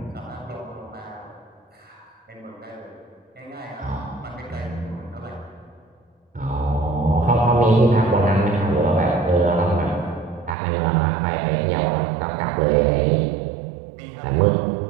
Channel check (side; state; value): left; drops out; at 10.6 s